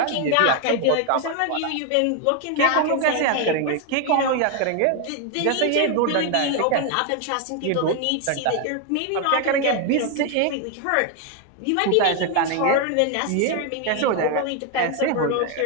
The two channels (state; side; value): different; both; correlation 0.01